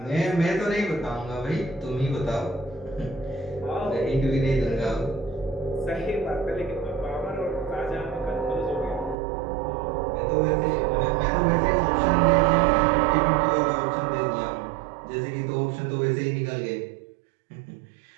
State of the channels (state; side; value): drops out; left; at 9.2 s